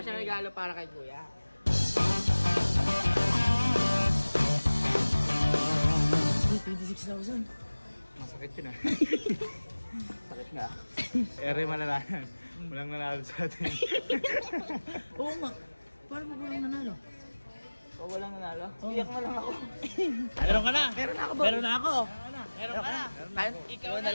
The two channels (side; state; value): both; inverted; correlation -1.00